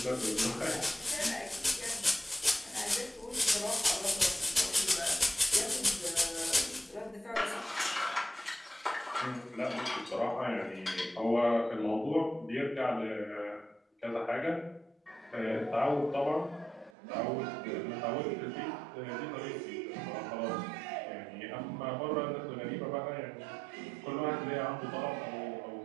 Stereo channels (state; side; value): drops out; left; at 16.9 s